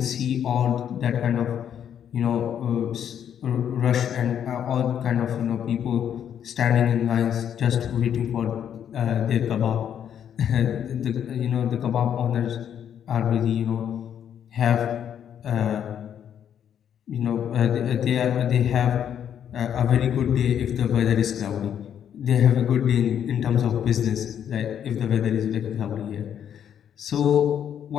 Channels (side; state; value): right; quieter; 9.2 dB